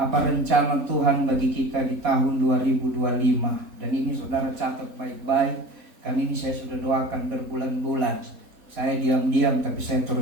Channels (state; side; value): late; left; 3.9 ms